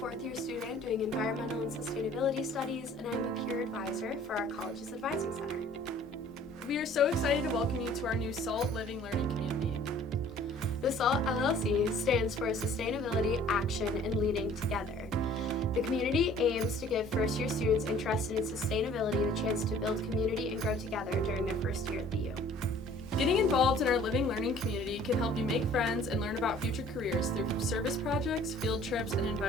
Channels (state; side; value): normal; both; correlation 0.53